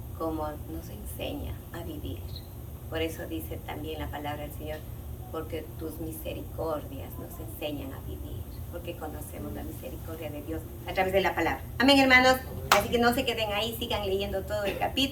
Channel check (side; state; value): both; identical; correlation 1.00